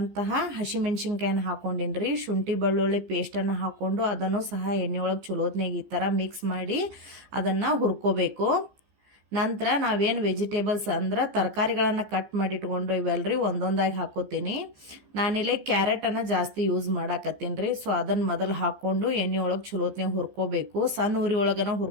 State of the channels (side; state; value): left; late; 15 ms